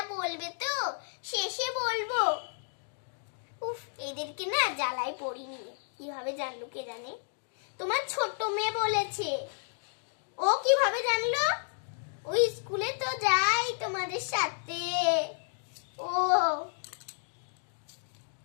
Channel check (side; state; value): right; silent; digital silence